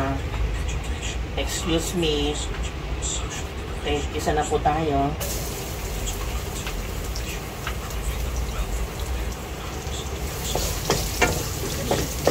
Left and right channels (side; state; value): both; identical; correlation 1.00